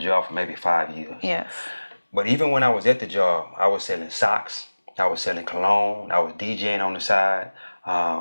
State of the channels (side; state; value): both; inverted; correlation -1.00